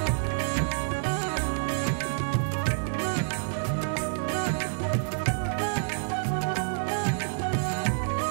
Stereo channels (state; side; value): silent; left; digital silence